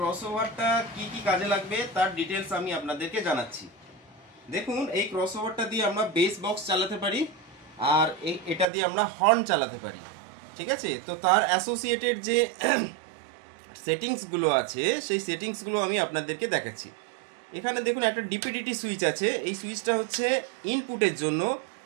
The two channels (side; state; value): left; drops out; at 8.7 s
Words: কি কি কাজে লাগবে তার ডিটেলস আমি আপনাদেরকে জানাচ্ছি। দেখুন, এই ক্রসওভারটা দিয়ে আমরা বেস বক্স চালাতে পারি, আর এটা দিয়ে আমরা হর্ন চালাতে পারি। ঠিক আছে, তো তার অ্যাসোসিয়েটেড যে সেটিংসগুলো আছে সেই সেটিংসগুলো আমি আপনাদেরকে দেখাচ্ছি। এখানে দেখুন একটা ডিপিডিটি সুইচ আছে। এই সুইচটা হচ্ছে ইনপুটের জন্য।